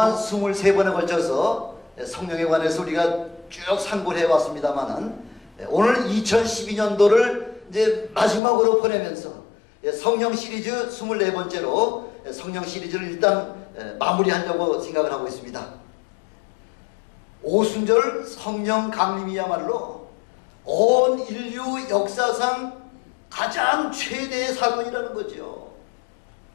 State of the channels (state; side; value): drops out; right; at 8.4 s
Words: 23번에 걸쳐서 성령에 관해서 우리가 쭉 상고를 해왔습니다만은 오늘 2012년도를 이제 마지막으로 보내면서 성령 시리즈 24번째로 성령 시리즈를 일단 마무리하려고 생각을 하고 있습니다. 오순절 성령 강림이야말로 온 인류 역사상 가장 최대의 사건이라는 거죠.